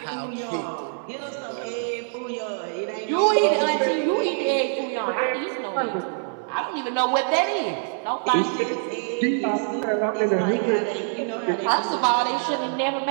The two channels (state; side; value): silent; left; digital silence